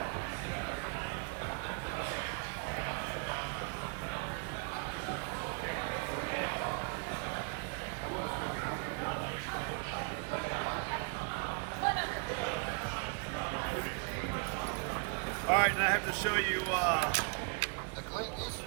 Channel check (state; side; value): quieter; left; 36.7 dB